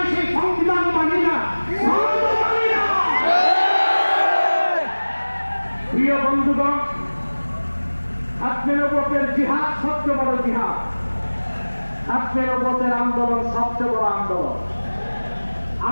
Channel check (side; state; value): both; inverted; correlation -1.00